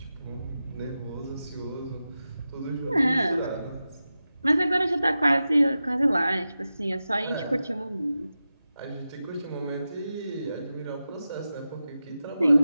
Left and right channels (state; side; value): inverted; both; correlation -0.92